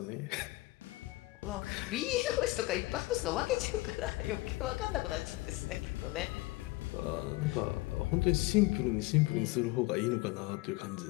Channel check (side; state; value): right; quieter; 21.2 dB